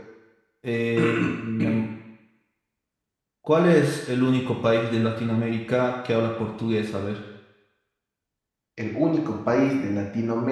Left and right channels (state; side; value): identical; both; correlation 1.00